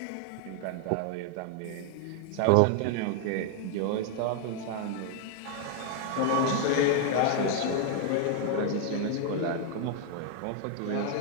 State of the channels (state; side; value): different; both; correlation 0.00